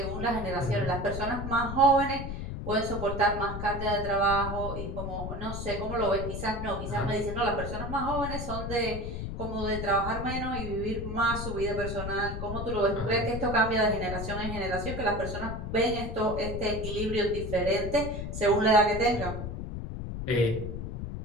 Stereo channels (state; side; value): noise; left; rumble, 5 dB below the sound